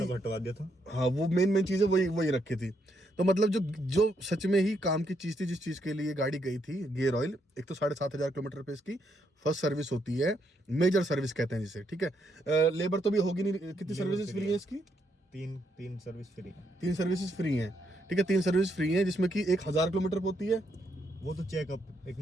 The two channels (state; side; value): normal; both; correlation 0.76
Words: हटवा दिया था। हाँ, वो मेन चीजें वही रखी थी। तो मतलब जो सच में ही काम की चीज थी, जिस चीज के लिए गाड़ी गई थी, गियर ऑयल, एक तो 7,500 किलोमीटर पे इसकी फर्स्ट सर्विस होती है, मेजर सर्विस कहते हैं जिसे, ठीक है। लेबर तो भी होगी नहीं। कितनी सर्विसेज फ्री है इसकी? तीन सर्विस फ्री है। 3 सर्विसेज फ्री हैं, ठीक है। 3 सर्विस फ्री हैं जिसमें कि 1,000 किलोमीटर होती है। वो तो चेकअप, एक